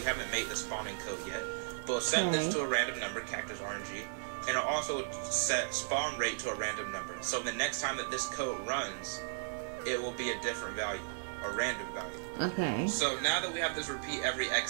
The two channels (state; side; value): silent; left; digital silence